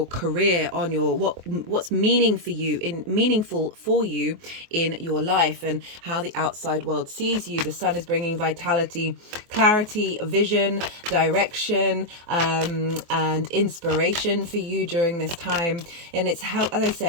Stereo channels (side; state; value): left; late; 24 ms